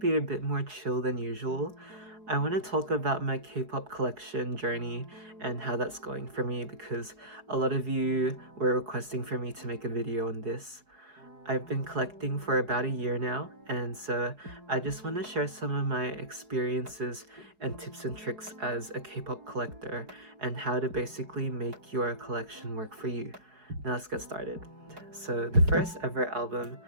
a bit more chill than usual. I want to talk about my K-pop collection journey and how that's going for me because a lot of you were requesting for me to make a video on this. I've been collecting for about a year now, and so I just want to share some of my experiences and tips and tricks as a K-pop collector and how to basically make your collection work for you. Now let's get started. So the first ever album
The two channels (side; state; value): left; late; 4.7 ms